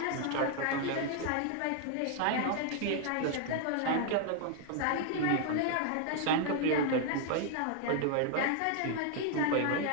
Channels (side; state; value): both; different; correlation 0.00